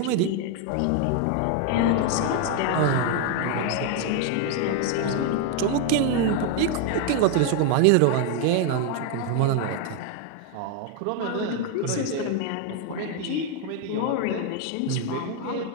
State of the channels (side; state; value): both; different; correlation 0.00